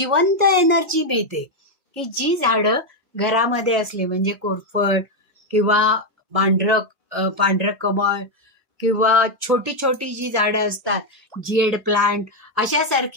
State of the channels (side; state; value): both; normal; correlation 0.04